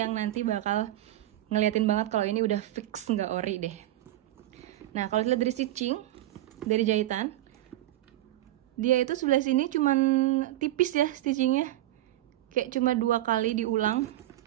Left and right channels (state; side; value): quieter; left; 14.8 dB